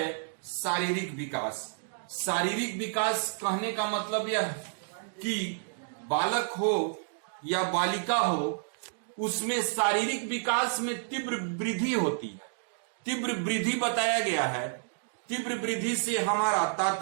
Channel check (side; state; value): left; silent; digital silence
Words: शारीरिक विकास। शारीरिक विकास कहने का मतलब यह कि बालक हो या बालिका हो, उसमें शारीरिक विकास में तीव्र वृद्धि होती है। तीव्र वृद्धि बताया गया है। तीव्र वृद्धि से हमारा